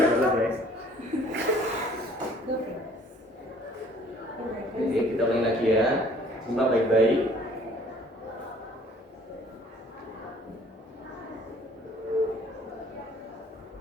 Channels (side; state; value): both; normal; correlation 0.56